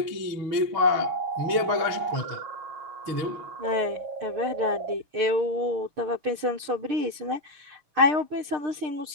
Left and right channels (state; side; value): late; left; 6.6 ms